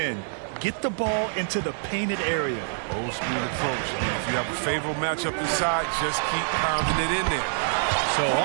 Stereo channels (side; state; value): left; silent; digital silence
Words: Get the ball into the painted area. Old school approach. I mean, if you have a favorable matchup inside, just keep pounding it in there. So